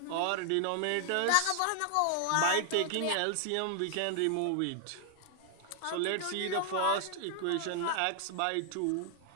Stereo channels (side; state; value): both; different; correlation 0.00